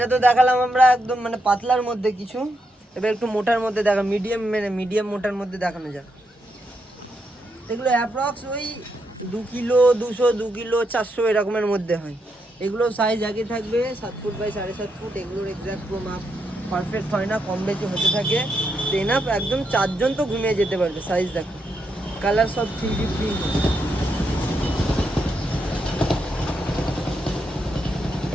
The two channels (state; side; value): normal; both; correlation 0.81